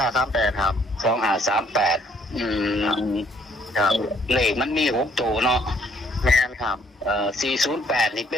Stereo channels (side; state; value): both; normal; correlation 0.64